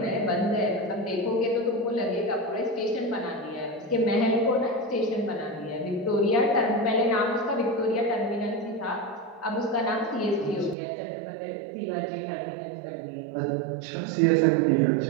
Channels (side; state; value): left; drops out; at 10.8 s